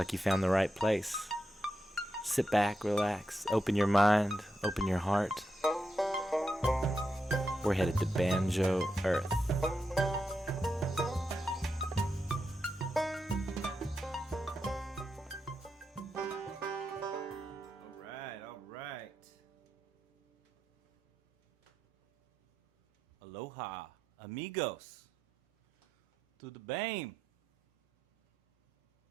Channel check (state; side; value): normal; both; correlation 0.86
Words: you found the right place. Sit back, relax, open your mind, open your heart. We're headed to Banjo, Earth. Alright. Aloha, amigos. To the BAME.